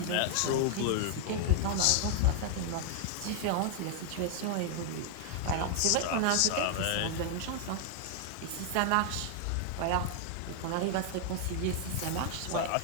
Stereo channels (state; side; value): different; both; correlation 0.00